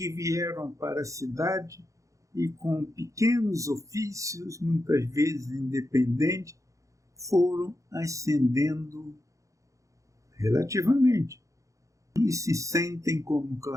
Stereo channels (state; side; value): late; left; 0.15 ms